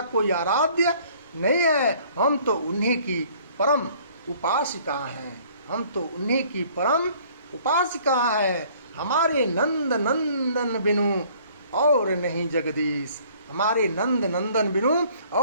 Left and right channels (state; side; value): inverted; both; correlation -0.57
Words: कोई आराध्य नहीं है। हम तो उन्हीं की परम उपासिका हैं, हम तो उन्हीं की परम उपासिका है। हमारे नंद नंदन बिनु और नहीं जगदीश, हमारे नंद नंदन बिनु